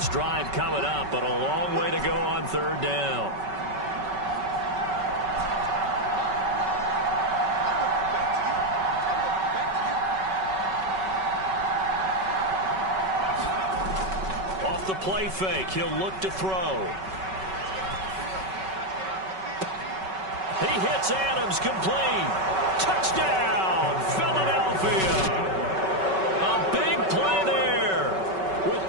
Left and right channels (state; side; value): late; left; 5.3 ms